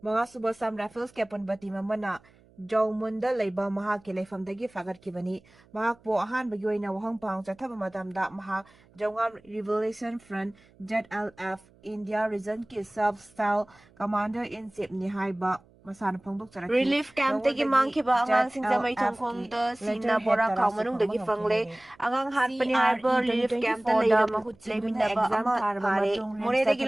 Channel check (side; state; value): right; noise; hum, 29 dB below the sound